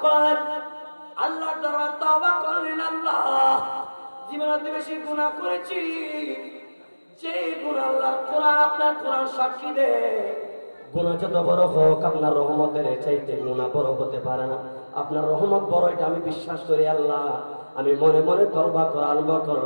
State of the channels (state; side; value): inverted; both; correlation -1.00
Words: করলেন, আল্লাহর দরবারে তওবা করলেন, আল্লাহ জীবনে বেশি গুনাহ করেছি, যে গুনাহ আল্লাহর কোরআন, আপনার কোরআন সাক্ষী দেয়, গুনাহ যত বড় হোক আপনার রহমতের চাইতে গুনাহ বড় হতে পারে না। আপনার রহমত বড়, এটা আমি বিশ্বাস করি আল্লাহ। আমি মনে মনে তওবা করা আরম্ভ